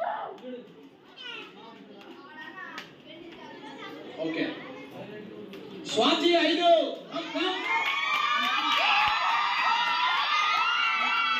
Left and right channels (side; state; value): both; identical; correlation 1.00